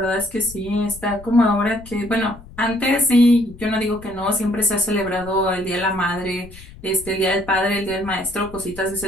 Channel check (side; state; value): left; noise; rumble, 18 dB below the sound